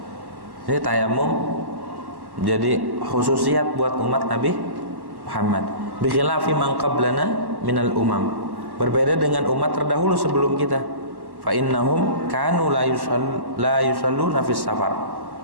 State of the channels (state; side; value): late; left; 1.1 ms